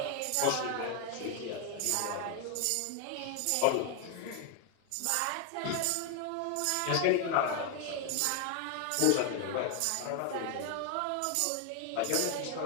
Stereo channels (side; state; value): both; different; correlation 0.01